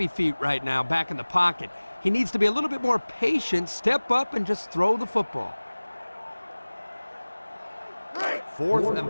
feet right now back in the pocket. He needs to be a little bit more patient, step up, and just throw the football. 4th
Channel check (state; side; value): inverted; both; correlation -1.00